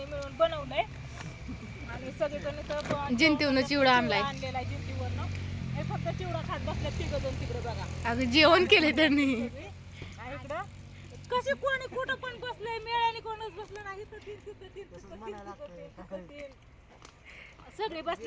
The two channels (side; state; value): both; identical; correlation 1.00